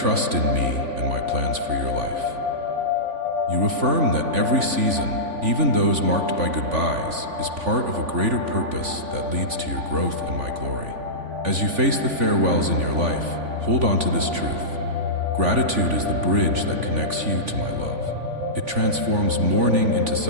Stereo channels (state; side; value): late; left; 3.5 ms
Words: in me and my plans for your life. You affirm that every season, even those marked by goodbyes, is part of a greater purpose that leads to your growth and my glory. As you face the farewells in your life, hold on to this truth. Gratitude is the bridge that connects you to my love. It transforms mourning into